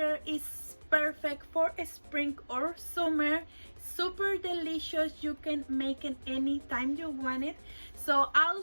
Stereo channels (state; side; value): inverted; both; correlation -1.00